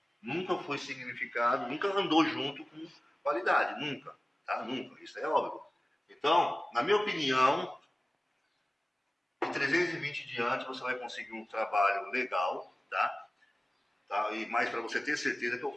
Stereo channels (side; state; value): both; normal; correlation 0.97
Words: nunca foi significado, nunca andou junto com qualidade, nunca, tá? Nunca, isso é óbvio. Então, na minha opinião, de 320 diante você vai conseguir um trabalho legal, tá? E mais para você ter certeza que eu